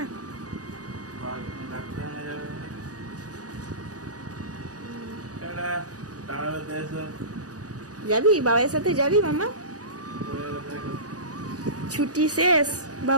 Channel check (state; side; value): late; left; 0.67 ms